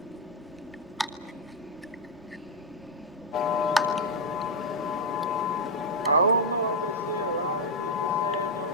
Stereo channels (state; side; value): noise; right; rumble, 27 dB below the sound